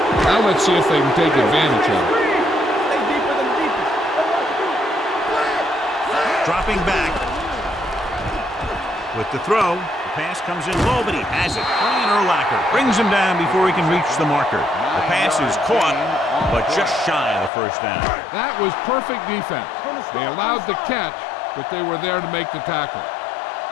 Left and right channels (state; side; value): drops out; right; at 17.5 s